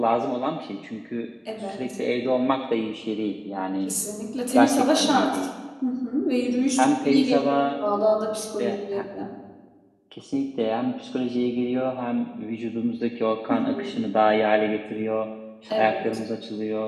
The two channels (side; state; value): both; identical; correlation 1.00